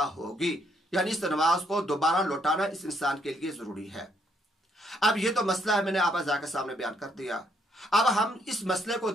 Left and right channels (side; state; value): both; normal; correlation 0.72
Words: ہوگی، یعنی اس نماز کو دوبارہ لوٹانا اس انسان کے لیے ضروری ہے۔ اب یہ تو مسئلہ ہے، میں نے آپ حضرات کے سامنے بیان کر دیا۔ اب ہم اس مسئلے کو